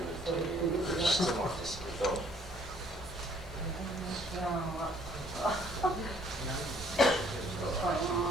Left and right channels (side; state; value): both; normal; correlation 0.61